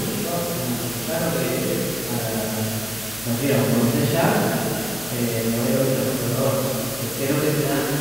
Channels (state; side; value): noise; left; hum, 17 dB below the sound